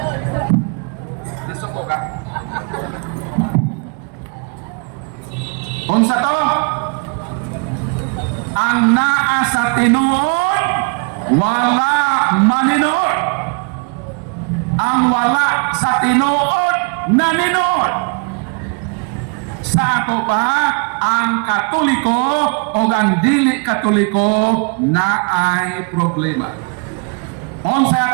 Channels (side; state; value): left; quieter; 36.2 dB